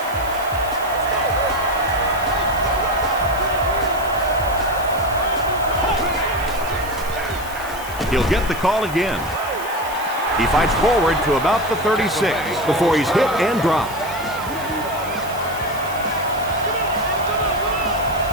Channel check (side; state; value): right; noise; hiss, 16 dB below the sound